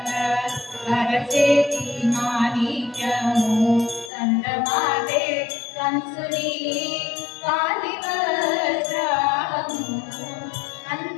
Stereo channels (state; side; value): drops out; right; at 4.1 s